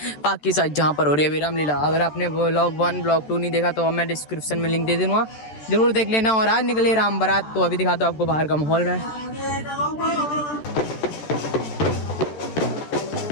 पाक की साइड जहाँ पर हो रही है रामलीला। अगर आपने ब्लॉग 1 ब्लॉग 2 नहीं देखा तो मैं डिस्क्रिप्शन में लिंक दे दूंगा, जरूर देख लेना। और आज निकले राम बारात, तो अभी दिखाता हूँ आपको बाहर का माहौल में।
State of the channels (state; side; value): late; right; 14 ms